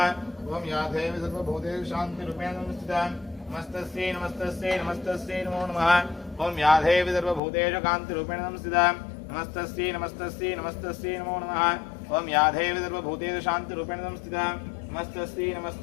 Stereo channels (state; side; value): drops out; right; at 7.4 s